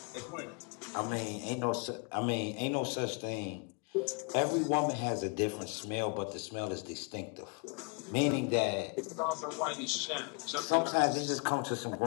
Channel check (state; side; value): quieter; right; 34.4 dB